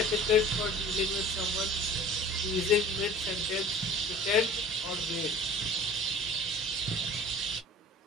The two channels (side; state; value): both; normal; correlation 0.43